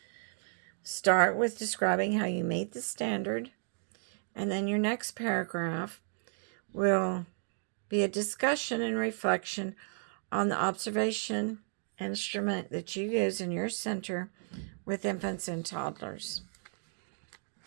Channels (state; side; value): silent; left; 55 dB below the other